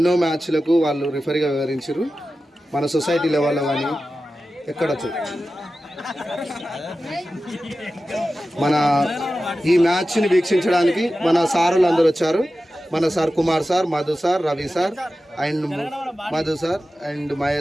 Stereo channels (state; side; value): normal; both; correlation 0.94